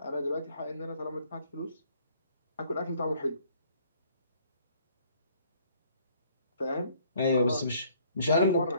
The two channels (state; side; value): inverted; both; correlation -0.60